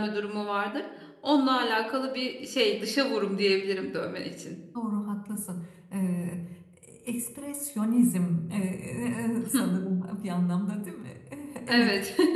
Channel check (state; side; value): identical; both; correlation 1.00